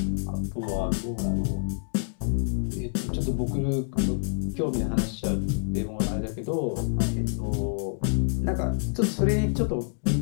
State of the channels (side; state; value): right; silent; digital silence